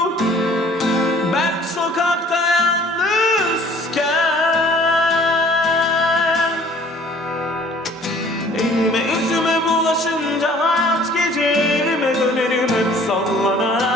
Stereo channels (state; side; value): normal; both; correlation 0.54